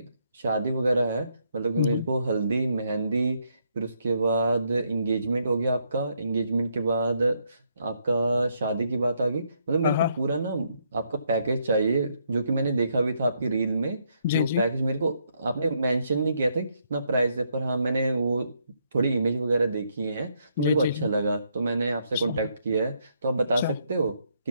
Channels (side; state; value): both; inverted; correlation -0.74